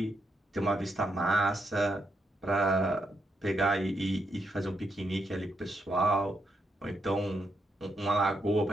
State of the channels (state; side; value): normal; both; correlation 0.80